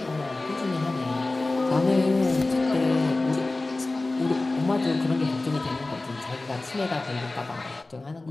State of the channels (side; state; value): right; quieter; 3.1 dB